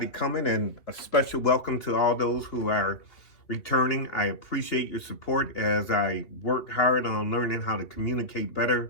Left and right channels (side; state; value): right; late; 2.8 ms